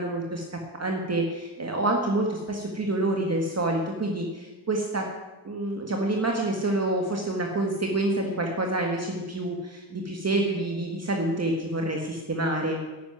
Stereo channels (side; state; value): both; normal; correlation 0.24